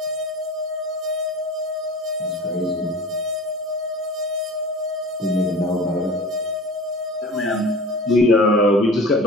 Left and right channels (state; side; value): normal; both; correlation 0.38